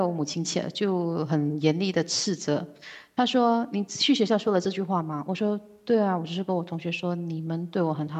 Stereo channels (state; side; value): identical; both; correlation 1.00